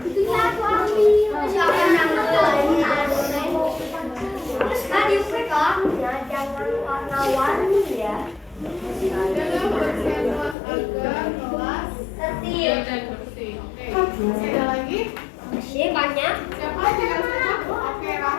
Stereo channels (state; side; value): drops out; right; at 10.6 s